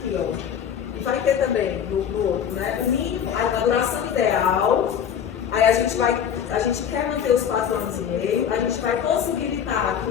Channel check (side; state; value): right; quieter; 8.4 dB